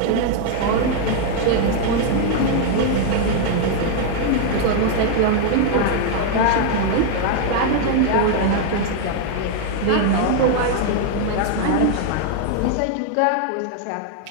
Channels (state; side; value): different; both; correlation 0.00